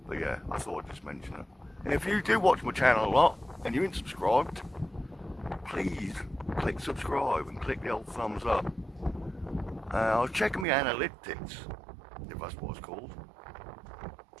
But yeah, I thought I'd just mention it. And if you do watch my channel a lot, and you ain't subscribed, please click subscribe and click the old thumbs up. I was checking my analytics, if that's what it's called.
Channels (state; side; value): drops out; left; at 10.7 s